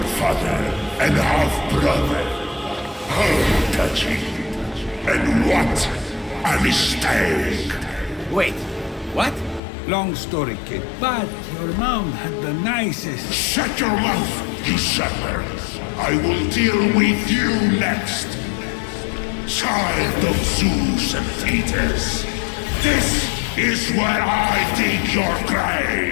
father and half-brother. How touching. And what a mistake. Wait, what? Long story, kid. But your mom had the nicest... Shut your mouth, you sucker! I will deal with you next! Child of Zeus and Thetis! This is where I dig your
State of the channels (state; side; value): drops out; right; at 9.6 s